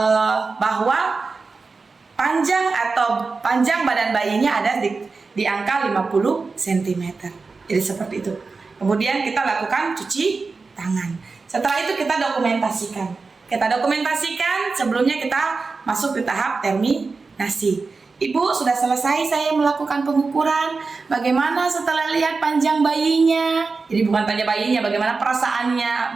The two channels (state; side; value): quieter; left; 4.2 dB